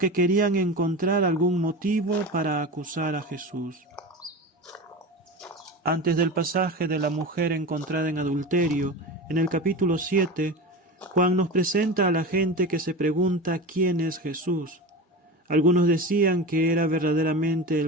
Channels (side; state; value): both; normal; correlation 0.28